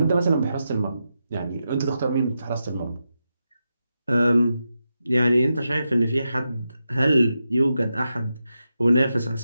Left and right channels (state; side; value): inverted; both; correlation -0.88